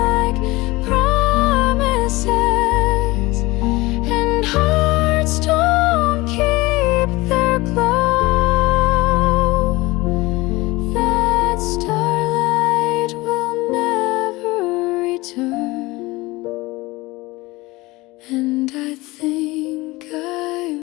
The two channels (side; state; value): right; quieter; 21.3 dB